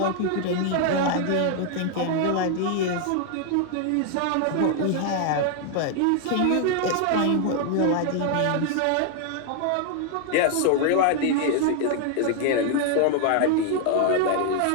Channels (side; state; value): both; different; correlation 0.00